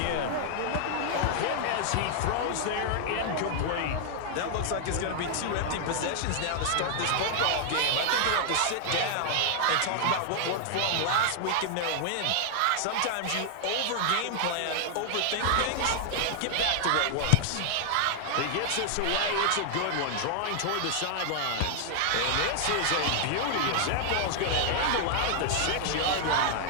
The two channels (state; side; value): different; both; correlation 0.00